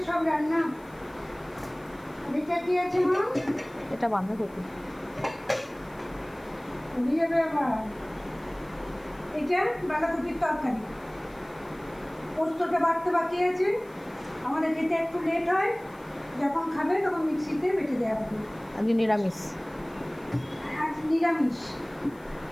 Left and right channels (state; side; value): noise; left; hiss, 28 dB below the sound